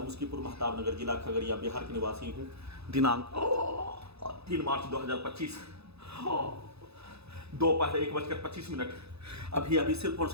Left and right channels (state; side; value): late; left; 0.79 ms